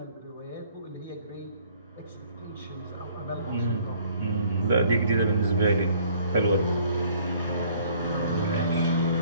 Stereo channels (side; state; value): both; inverted; correlation -0.58